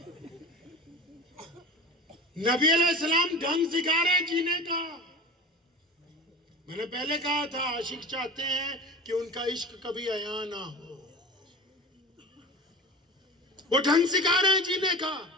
نبی علیہ السلام ڈھنگ سکھا رہے ہیں جینے کا. میں نے پہلے کہا تھا عاشق چاہتے ہیں کہ ان کا عشق کبھی عیاں نہ ہو. وہ ڈھنگ سکھا رہے ہیں جینے کا.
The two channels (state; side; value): normal; both; correlation 0.33